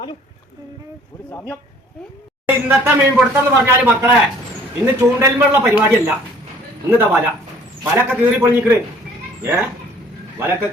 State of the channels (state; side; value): normal; both; correlation 0.55